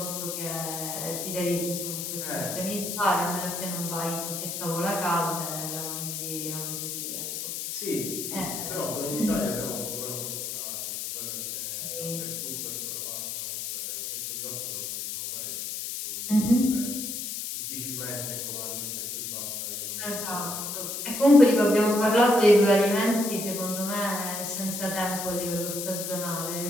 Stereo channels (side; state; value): left; noise; hiss, 5 dB below the sound